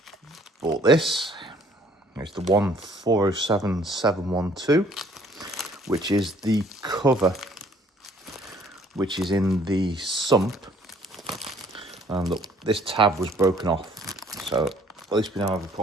bought this. It's the 1407712, which is the cover, which is in the sump. And look, this tab was broken off, so at least we now have a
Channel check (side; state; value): both; normal; correlation 0.59